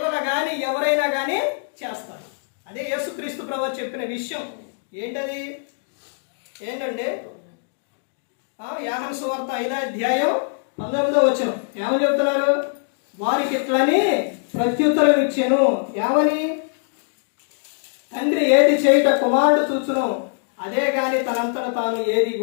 కానీ ఎవరైనా కానీ చేస్తారు. అదే యేసుక్రీస్తు ప్రభువు చెప్పిన విషయం. ఏంటండి? యోహాను సువార్త 5వ అధ్యాయం 19వ వచనం ఏమని చెబుతున్నారు? వారికి ఇట్లని ప్రత్యుత్తరం ఇచ్చాను. ఏమని? తండ్రి ఏది చేయుట కుమారుడు చూచును, అదే గాని తనంతట తాను ఏది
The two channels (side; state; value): right; silent; digital silence